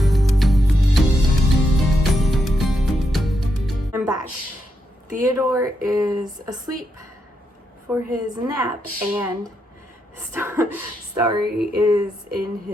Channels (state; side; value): normal; both; correlation 0.82